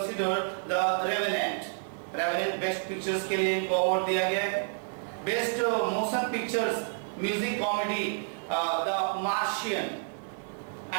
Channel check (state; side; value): silent; left; 56 dB below the other